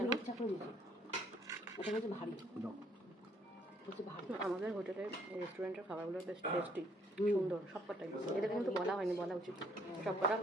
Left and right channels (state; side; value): normal; both; correlation 0.64